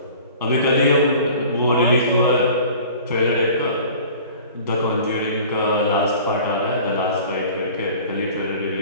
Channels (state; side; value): inverted; both; correlation -0.45